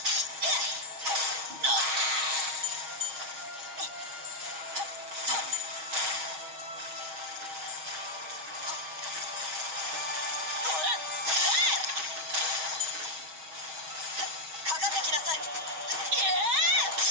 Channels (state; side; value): late; left; 6.3 ms